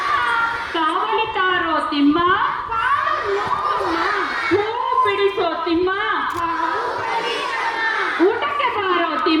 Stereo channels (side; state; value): both; identical; correlation 1.00